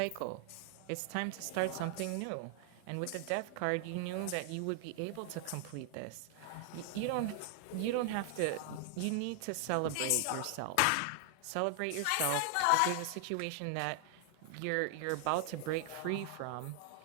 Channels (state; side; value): different; both; correlation 0.00